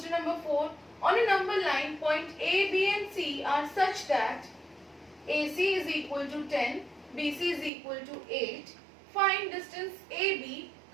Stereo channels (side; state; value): left; drops out; at 7.7 s